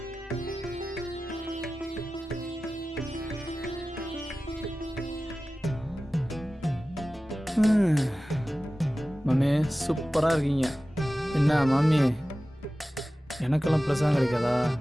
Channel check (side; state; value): both; normal; correlation 0.96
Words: மாமி சூப்பரா இருக்கீங்க. என்ன மாமி, எனக்கெல்லாம் பிரசாதம் கிடைக்காதா?